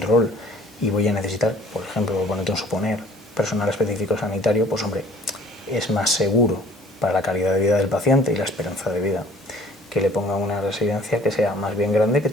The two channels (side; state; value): both; normal; correlation 0.53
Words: y voy a necesitar, por ejemplo, ponerte un suponer, personal específico sanitario, pues hombre, es más seguro para la calidad de vida del paciente y la esperanza de vida que le ponga una residencia que sea más bien grande, que